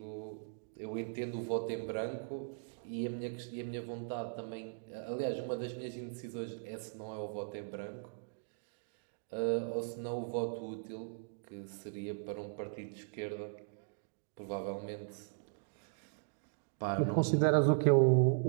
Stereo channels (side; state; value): left; silent; digital silence